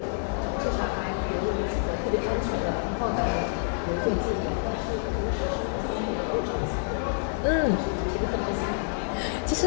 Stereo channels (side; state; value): right; silent; digital silence